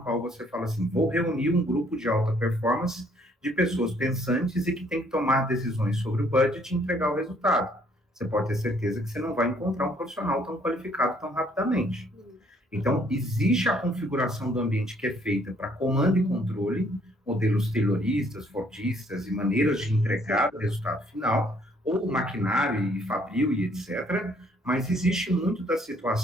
você fala assim, vou reunir um grupo de alta performance de pessoas pensantes e que tem que tomar decisões sobre o budget e entregar o resultado, você pode ter certeza que você não vai encontrar um profissional tão qualificado tão rapidamente. Então, existe a configuração do ambiente que é feita para comando e controle, modelos tayloristas, fordistas e maneiras de entregar o resultado final, ou maquinário e fabril e etc., mas existe muito da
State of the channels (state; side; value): normal; both; correlation 0.64